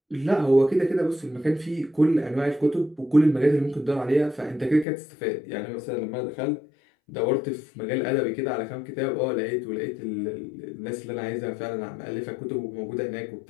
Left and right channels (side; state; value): right; drops out; at 4.9 s